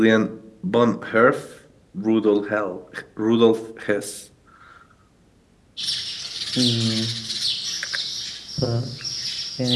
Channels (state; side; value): identical; both; correlation 1.00